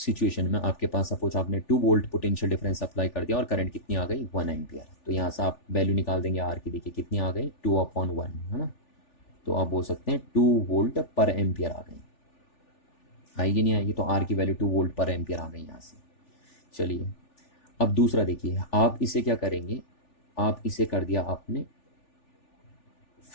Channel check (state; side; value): late; right; 3.4 ms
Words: में आपके पास सपोज आपने 2 वोल्ट पोटेंशियल डिफरेंस अप्लाई कर दिया और करंट कितनी आ गई, 1 एम्पियर। तो यहाँ से आप वैल्यू निकाल देंगे आर की, देखिए कितनी आ गई, 2/1, है ना। तो आप बोल सकते हैं 2 वोल्ट पर एम्पियर आ गई। आएगी नहीं आएगी? तो आर की वैल्यू 2 वोल्ट पर एम्पियर आ गई यहाँ से। चलिए, अब दूसरा देखिए, आप इसे क्या करेंगे, आप इसे कर दिया आपने